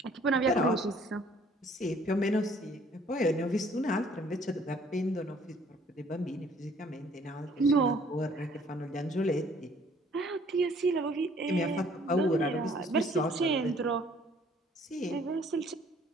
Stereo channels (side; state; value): both; normal; correlation 0.59